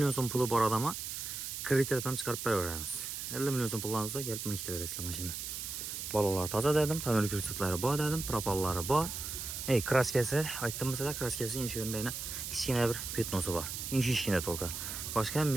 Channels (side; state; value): right; noise; hiss, 6 dB below the sound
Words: so'm puli bor odamga kreditdan chiqarib beraveramiz. 50 million so'm pullarni olsa kelib meni ketaverasizlar mashina. Balonlar toza dedim, tonirovka ko'rsatlari bor dedim, propallari bor. Kraskasi aytdim sizlarga, kraskasi inshurendayna kichkina bir petnosi bor. Inshishkina to'lqa. Boshqa ham